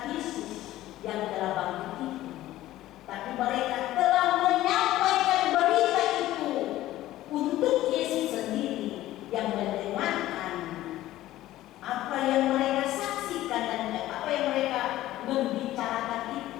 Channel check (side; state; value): right; quieter; 15.0 dB